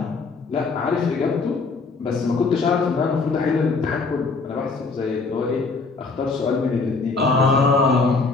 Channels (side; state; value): right; quieter; 4.1 dB